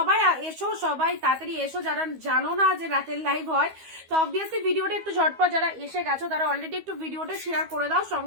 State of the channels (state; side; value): late; left; 12 ms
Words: এসো, সবাই তাড়াতাড়ি এসো যারা জানো না যে রাতের লাইভ হয়। তো অবভিয়াসলি ভিডিওটা একটু ঝটপট, যারা এসে গেছো তারা অলরেডি একটু ভিডিওটা শেয়ার করে দাও,